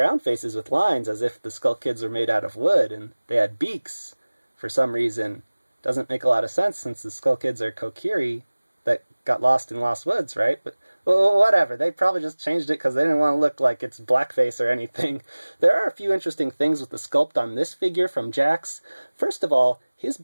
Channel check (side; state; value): both; inverted; correlation -1.00